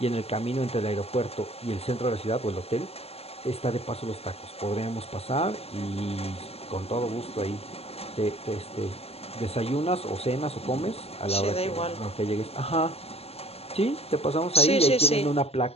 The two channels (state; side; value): late; right; 0.29 ms